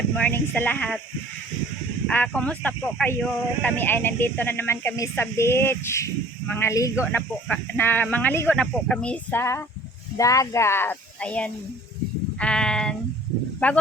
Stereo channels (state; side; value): normal; both; correlation 0.51